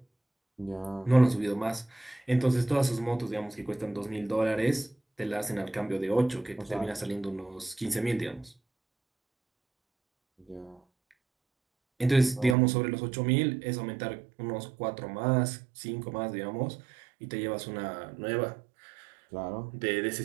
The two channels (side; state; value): left; drops out; at 12.6 s